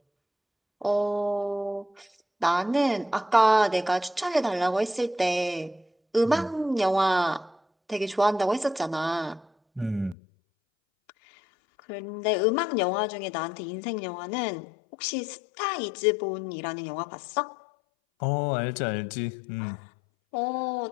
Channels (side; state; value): right; drops out; at 10.2 s